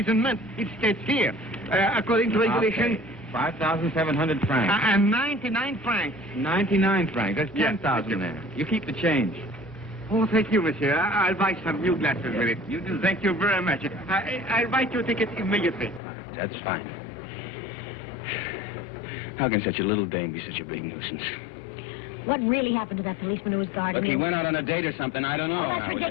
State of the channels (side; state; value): right; drops out; at 16.0 s